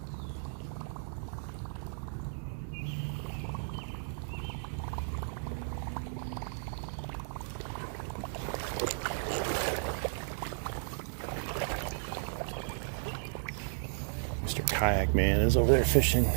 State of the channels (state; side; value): silent; left; digital silence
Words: Pink man is over there fishing